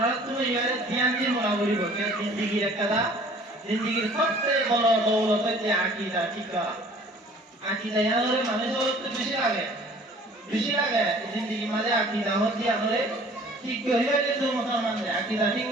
তুমি ইয়ারে ধ্যান দিয়ে মনে করিব যে জিন্দেগির একটা জিন্দেগির সবচেয়ে বড় দৌলত যে আকীদা ঠিক আকীদা ইয়ারে মানুষের তো বেশি লাগে জিন্দেগি মাঝে আকীদা হচ্ছে আমাদের ঠিক হইলে যে মুসলমান আকীদা ঠিক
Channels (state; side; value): normal; both; correlation 0.51